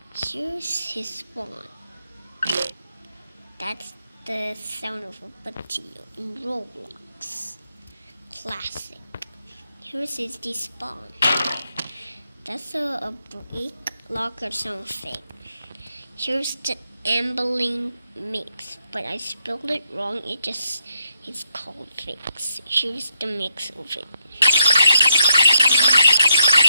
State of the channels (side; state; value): both; inverted; correlation -0.79